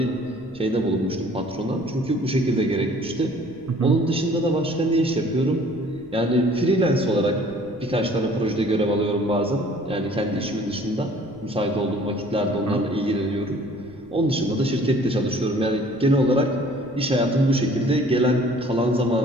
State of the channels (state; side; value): noise; right; rumble, 27 dB below the sound